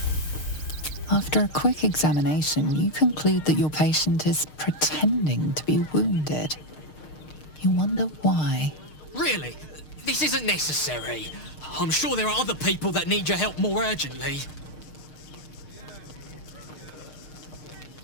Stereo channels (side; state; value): right; late; 6.5 ms